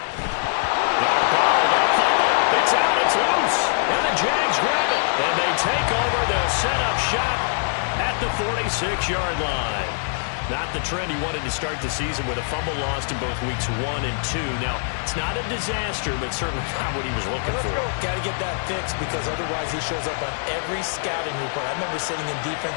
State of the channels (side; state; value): right; silent; digital silence